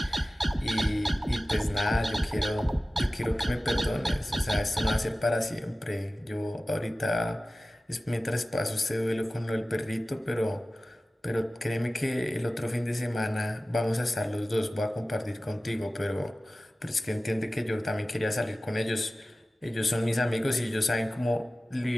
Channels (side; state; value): both; normal; correlation 0.96